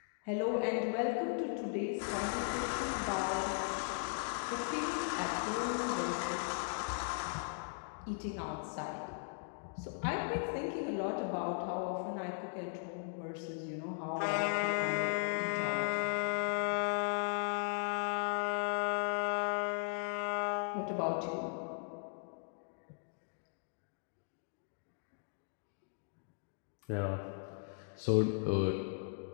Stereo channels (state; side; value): silent; right; digital silence